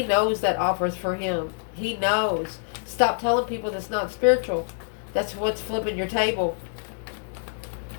knows that offers for him. He knows. Stop telling people that's not spiritual. That's what's flipping your table.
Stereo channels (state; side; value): silent; right; digital silence